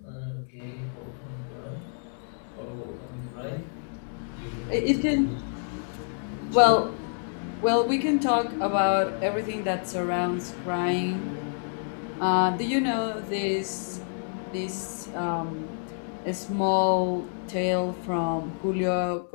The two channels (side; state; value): right; silent; digital silence